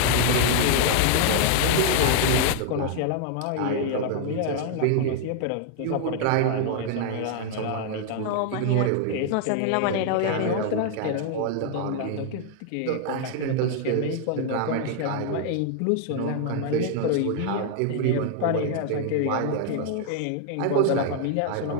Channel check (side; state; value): both; different; correlation 0.00